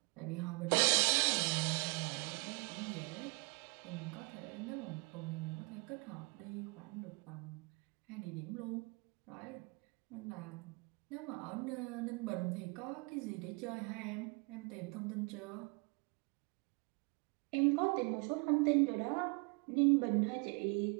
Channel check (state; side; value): quieter; left; 31.2 dB